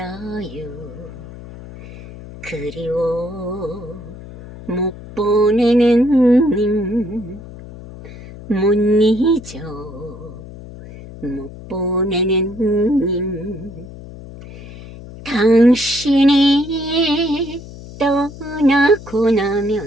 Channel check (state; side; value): noise; left; hum, 15 dB below the sound